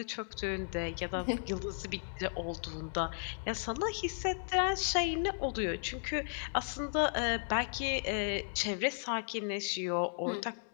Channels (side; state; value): right; silent; digital silence